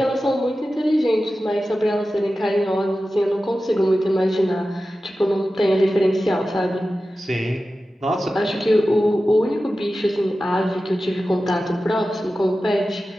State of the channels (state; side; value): normal; both; correlation 0.94